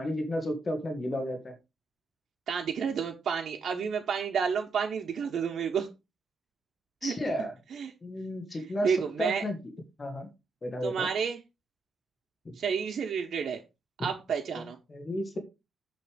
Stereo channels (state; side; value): quieter; left; 3.9 dB